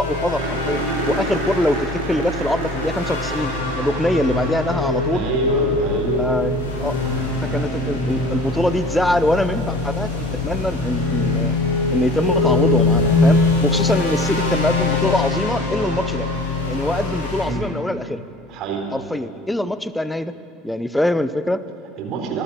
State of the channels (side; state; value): both; normal; correlation 0.47